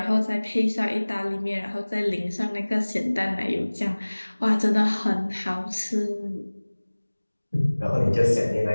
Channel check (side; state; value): both; inverted; correlation -1.00